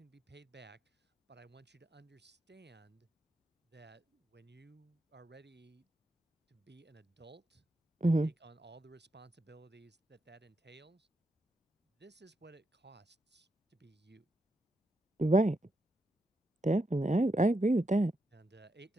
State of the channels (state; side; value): normal; both; correlation 0.83